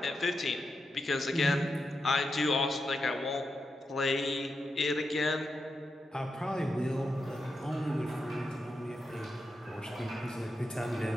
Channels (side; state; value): both; normal; correlation 0.87